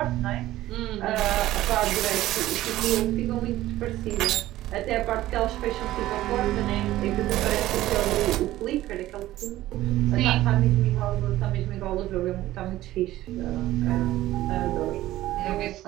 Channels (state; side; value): quieter; left; 15.3 dB